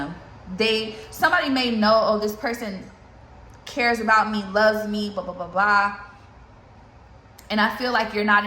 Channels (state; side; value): identical; both; correlation 1.00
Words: Somebody may know, oh, this person cares about me, loves me, blah, blah, blah, blah. And I feel like you're not